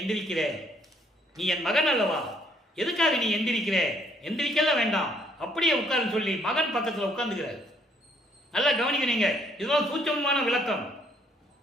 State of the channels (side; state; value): both; normal; correlation 0.66